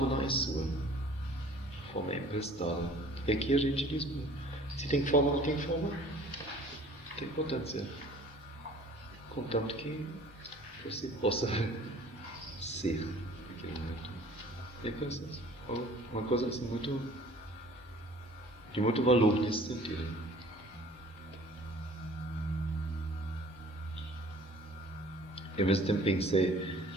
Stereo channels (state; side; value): normal; both; correlation 0.50